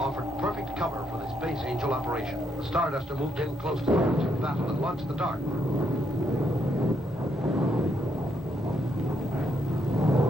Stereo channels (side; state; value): both; normal; correlation 0.76